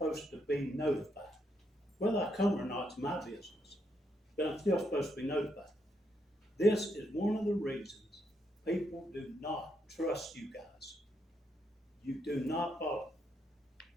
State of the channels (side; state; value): both; normal; correlation 0.78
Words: to be notified. Whether I come or not, it's my business, but I'm still supposed to be notified. This is one of the reasons people do not trust you guys. You do not follow.